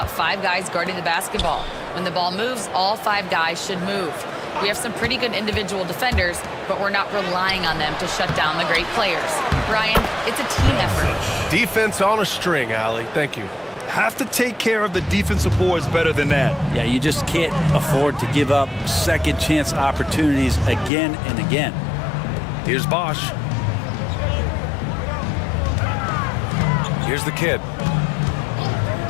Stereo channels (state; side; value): drops out; right; at 20.9 s